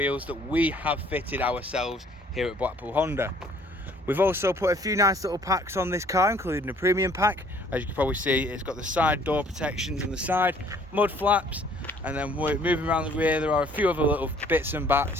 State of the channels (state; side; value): normal; both; correlation 0.58